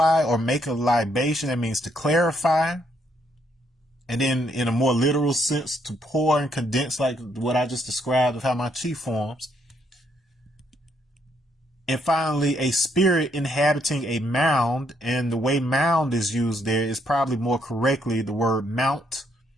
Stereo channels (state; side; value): normal; both; correlation 0.72